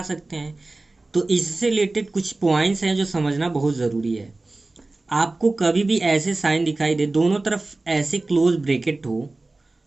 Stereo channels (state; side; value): quieter; left; 3.1 dB